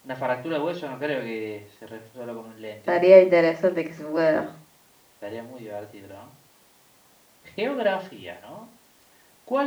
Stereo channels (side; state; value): both; identical; correlation 1.00